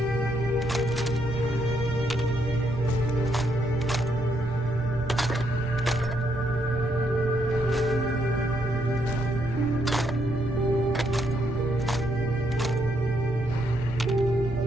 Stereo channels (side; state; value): both; normal; correlation 0.76